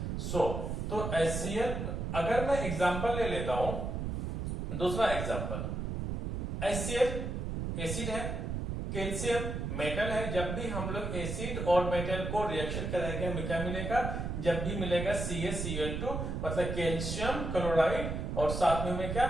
तो HCl, अगर मैं एग्जांपल ले लेता हूं, दूसरा एग्जांपल, HCl एसिड है, कैल्शियम मेटल है, जब भी हम लोग एसिड और मेटल को रिएक्शन कराएंगे हमें क्या मिलेगा, जब भी मिलेगा CaCl2 मतलब कैल्शियम क्लोराइड, और साथ में हमें क्या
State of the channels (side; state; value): right; noise; rumble, 3 dB below the sound